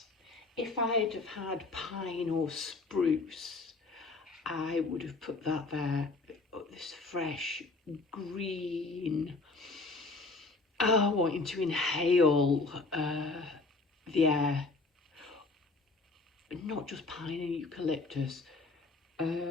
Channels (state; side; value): quieter; right; 3.7 dB